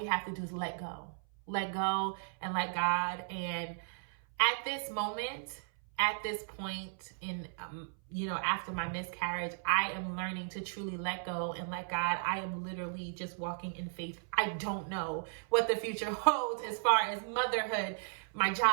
have to do is let go and let God. And at this moment, at this point in, after my miscarriage, I am learning to truly let go and let God. I am literally just walking in faith. I don't know what the future holds as far as motherhood, my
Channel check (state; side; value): silent; left; 54 dB below the other